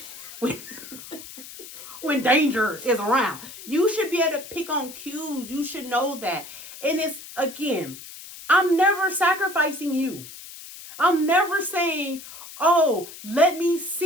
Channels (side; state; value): left; noise; hiss, 15 dB below the sound